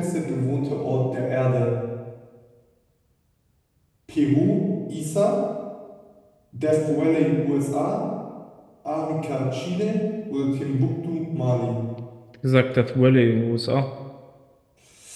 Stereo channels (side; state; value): both; identical; correlation 1.00